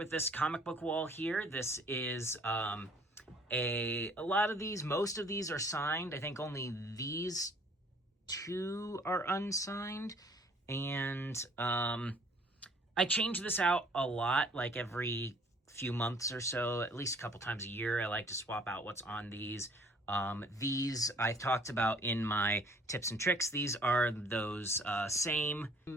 this comic book wall here. This is a lot of these, most of these are signed. I think only these two are unsigned. And I change this out a lot, like every few months or so, at least a couple times a year. I like to swap out what's on these. These I've talked about in my tips and tricks. These are those same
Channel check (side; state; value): both; normal; correlation 0.57